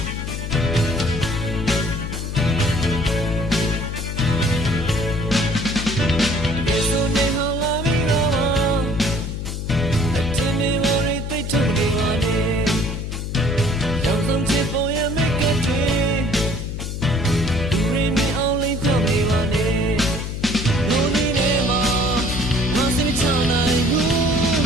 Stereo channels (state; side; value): noise; left; hum, 5 dB below the sound